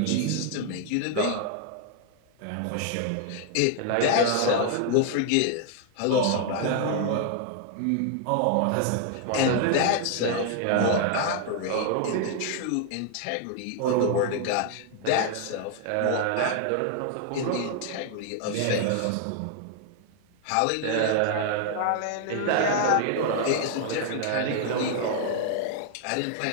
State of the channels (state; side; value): different; both; correlation 0.00